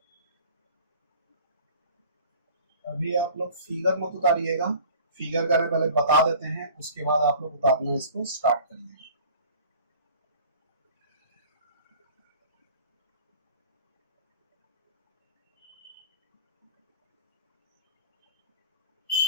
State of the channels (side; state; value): both; inverted; correlation -0.45